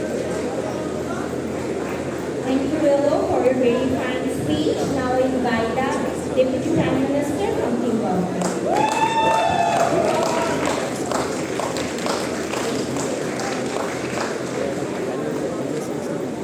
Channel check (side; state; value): both; identical; correlation 1.00